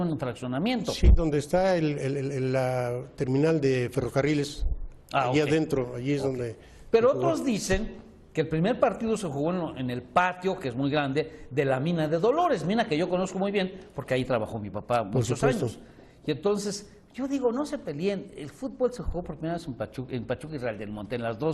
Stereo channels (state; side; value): identical; both; correlation 1.00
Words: fraccionamiento. Sí, donde está la terminal de ferrocarriles, allí adentro, allí es donde... Pero otros dicen que el primer partido se jugó en el patio, que es muy grande, de la mina de Dolores, mina que yo conozco muy bien, porque ahí trabajó mi papá muchos años. Y entonces, yo digo, no se peleen, el fútbol se jugó por primera vez en Pachuca y Real del Monte, en las